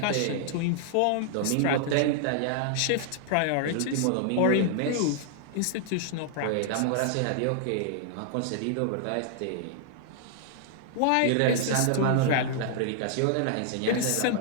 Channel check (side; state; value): both; different; correlation -0.01